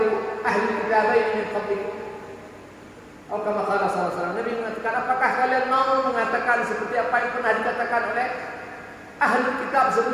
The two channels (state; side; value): identical; both; correlation 1.00